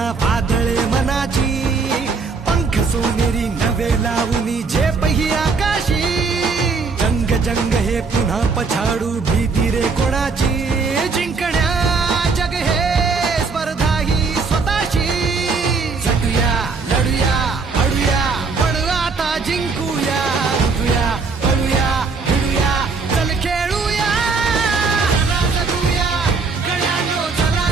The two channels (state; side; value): quieter; left; 4.6 dB